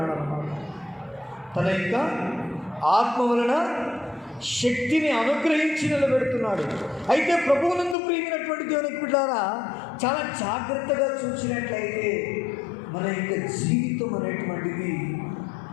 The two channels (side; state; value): right; drops out; at 8.0 s